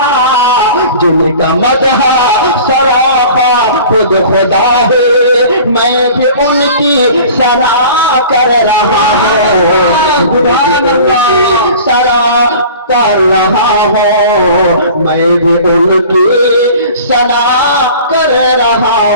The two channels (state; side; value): inverted; both; correlation -0.43